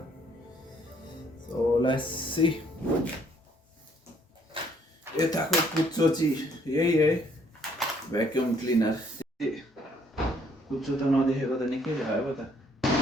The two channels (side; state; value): both; normal; correlation 0.65